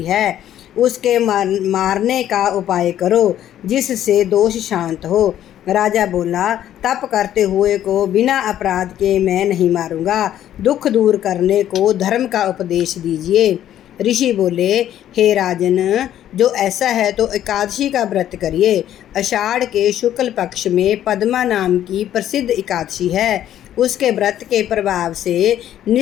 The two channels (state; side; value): quieter; right; 11.5 dB